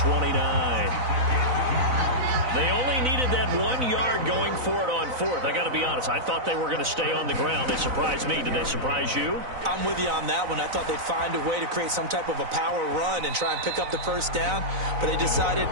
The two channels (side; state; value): left; late; 4.0 ms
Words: They only needed that 1 yard going for it on fourth. I got to be honest, I thought they were going to stay on the ground. They surprised me. Did they surprise you? I'm with you on that one. I thought they'd find a way to create some type of a power run and try and pick up the first down, but they decided